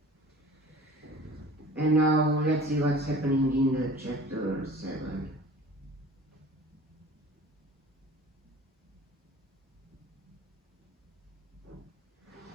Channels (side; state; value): both; normal; correlation 0.44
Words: And now let's see what's happening in the chapter 7.